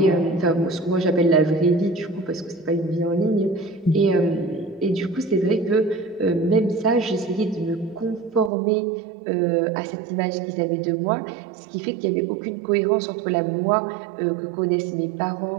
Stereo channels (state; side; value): drops out; left; at 8.5 s